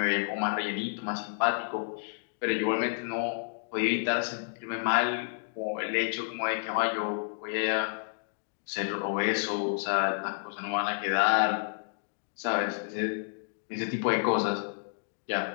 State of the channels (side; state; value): right; silent; digital silence